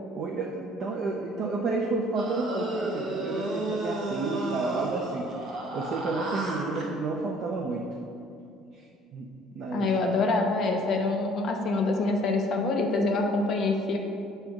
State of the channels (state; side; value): normal; both; correlation 0.56